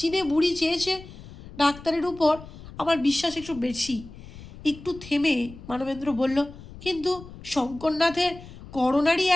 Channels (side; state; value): left; noise; rumble, 17 dB below the sound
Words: বুড়ি চেয়েছে ডাক্তারের উপর আমার বিশ্বাস একটু বেশি। একটু থেমে মানবেন্দ্র বলল, কিন্তু শঙ্করনাথের করোনারি